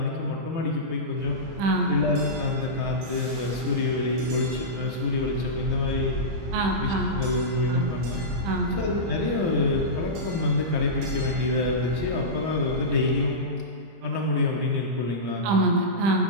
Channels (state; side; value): late; left; 25 ms